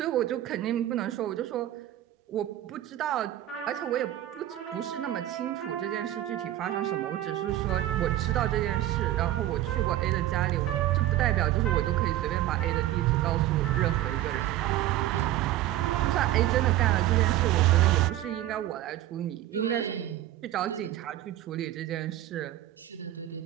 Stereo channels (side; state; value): left; quieter; 13.8 dB